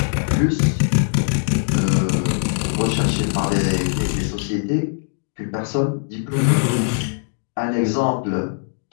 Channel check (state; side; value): silent; right; 65 dB below the other